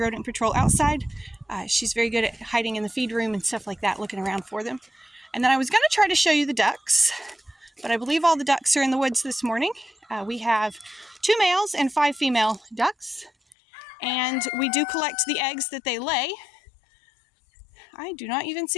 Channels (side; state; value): right; drops out; at 13.6 s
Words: patrol outside. She's very good at hiding in the feed room and stuff like that, looking around for them. And then I was going to try to show you the ducks, but I believe all the ducks are in the woods this morning. We have 2 males and 5 female ducks, and we do collect the eggs that they lay. I do not even